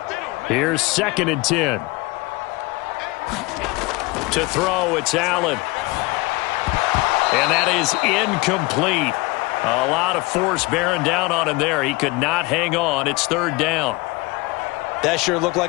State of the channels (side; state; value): right; quieter; 23.1 dB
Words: Here's 2nd and 10. To throw, it's Allen. And that is incomplete. A lot of force bearing down on him there. He could not hang on. It's 3rd down. That sure looked